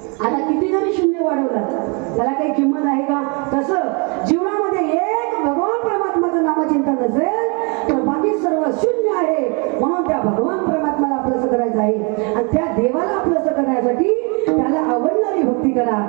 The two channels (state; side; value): quieter; left; 33.1 dB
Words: आता किती जरी शून्य वाढवला त्याला काही किंमत आहे का? तसं जीवनामध्ये एक भगवान परमात्माचं नामचिंतन नसेल तर बाकी सर्व शून्य आहे. म्हणून त्या भगवान परमात्माला आपलंसं करायचं आहे आणि त्या देवाला आपलंसं करण्यासाठी त्याला आवडणारी भक्ती करा.